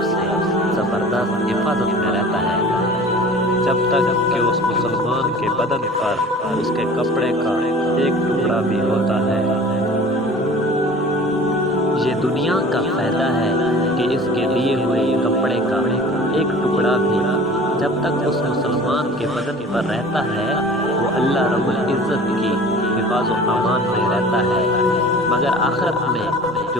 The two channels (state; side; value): normal; both; correlation 0.43